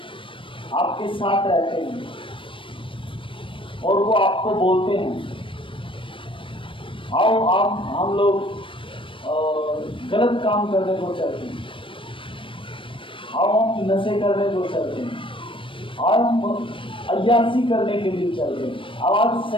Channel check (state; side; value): late; right; 0.25 ms